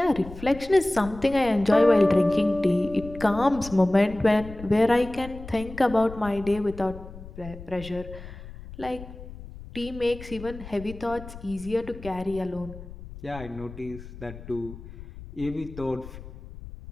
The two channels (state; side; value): noise; left; rumble, 14 dB below the sound